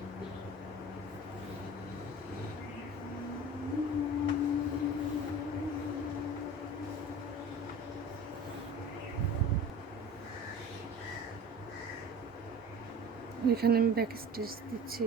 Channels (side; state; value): both; normal; correlation 0.39